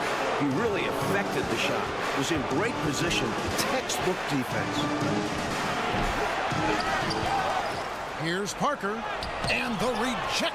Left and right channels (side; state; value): both; identical; correlation 1.00